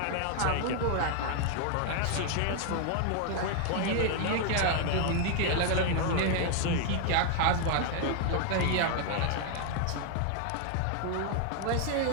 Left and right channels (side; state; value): both; different; correlation 0.00